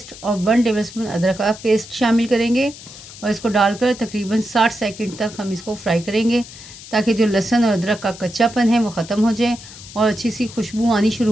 और 1 टेबलस्पून अदरक का पेस्ट शामिल करेंगे और इसको डालकर तकरीबन 60 सेकंड तक हम इसको फ्राई करेंगे ताकि जो लहसुन और अदरक का कच्चापन है वो ख़त्म हो जाए और अच्छी सी खुशबू आनी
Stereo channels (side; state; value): left; noise; hiss, 16 dB below the sound